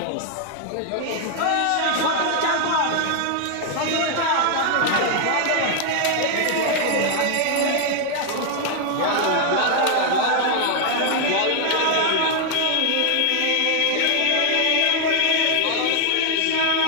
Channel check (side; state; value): both; different; correlation 0.00